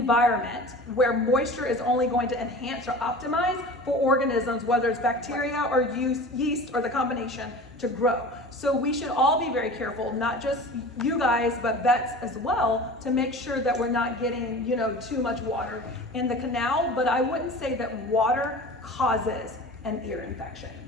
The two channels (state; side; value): normal; both; correlation 0.37